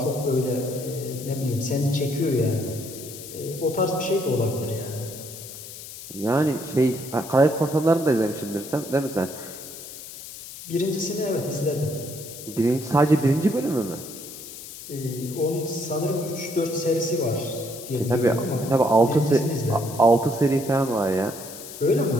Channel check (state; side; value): noise; left; hiss, 13 dB below the sound